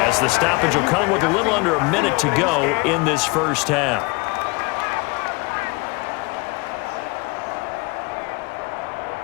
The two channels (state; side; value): quieter; right; 26.6 dB